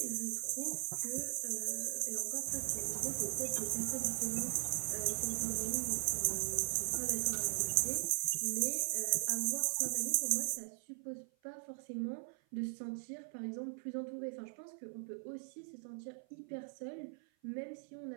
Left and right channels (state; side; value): silent; left; 52 dB below the other